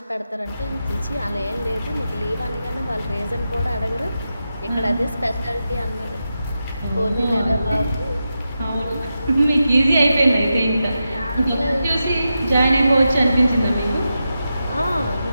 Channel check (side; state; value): both; inverted; correlation -0.89